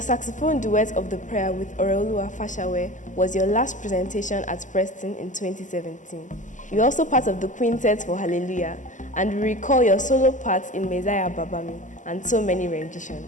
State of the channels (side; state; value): right; late; 0.37 ms